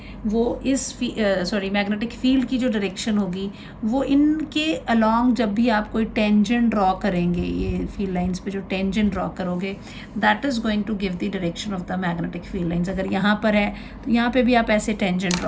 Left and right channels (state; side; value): identical; both; correlation 1.00